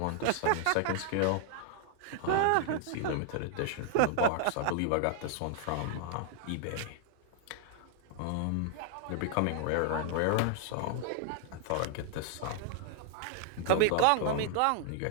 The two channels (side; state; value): both; different; correlation 0.00